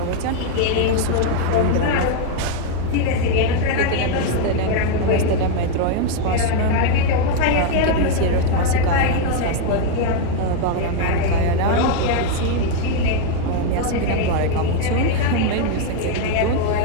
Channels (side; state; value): both; different; correlation 0.00